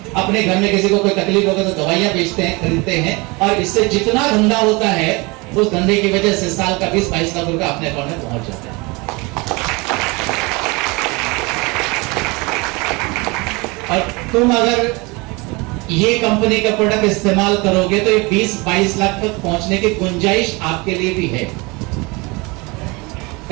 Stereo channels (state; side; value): quieter; left; 26.3 dB